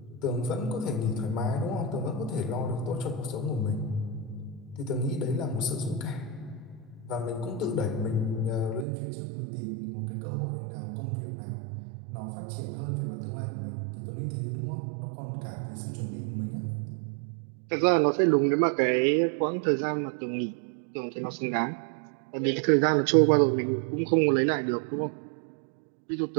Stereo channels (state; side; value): drops out; left; at 8.8 s